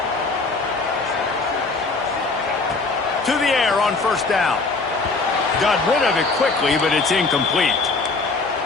To the air on first down. Got rid of it quickly, but it's incomplete.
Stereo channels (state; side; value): quieter; right; 3.8 dB